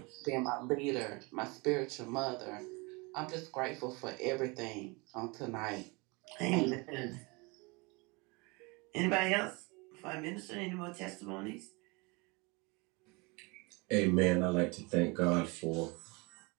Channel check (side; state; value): left; quieter; 27.6 dB